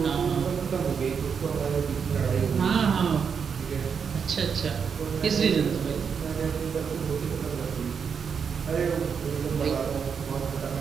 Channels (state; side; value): quieter; left; 6.5 dB